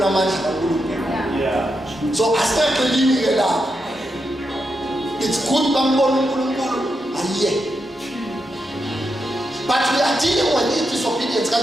amandla kaNkulunkulu. Yeah. So asingaqelini ke lapho. It's good bambona uNkulunkulu ayiye. But we are dealing with disobedience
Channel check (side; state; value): both; normal; correlation 0.85